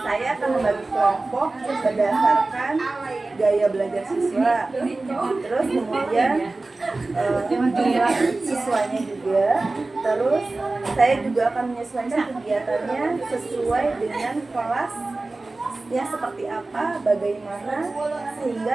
akan membagi kelompok berdasarkan gaya belajar siswa. Terus kemudian jumlah siswanya juga. Terus saya juga akan menyesuaikan kegiatannya sesuai dengan kelas ya seperti apa, bagaimana, sehingga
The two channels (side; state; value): left; quieter; 3.2 dB